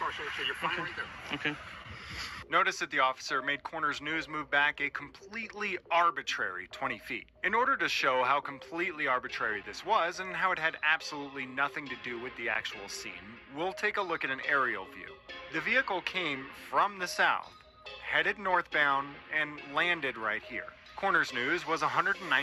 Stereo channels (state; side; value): identical; both; correlation 1.00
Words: sir, so you're fine right there. Okay. Notice that the officer made Corners News move back a completely arbitrary 20 feet. In order to show how completely arbitrary this was and how it had absolutely nothing to do with the actual scene, we'll take a look at an aerial view. The vehicle came from the south, headed northbound, and landed right here. Corners News was